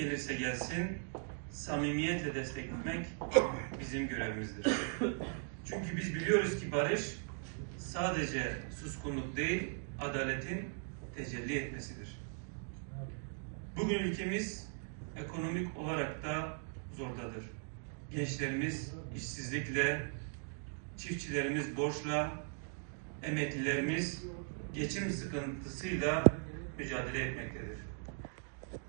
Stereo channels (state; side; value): silent; left; 52 dB below the other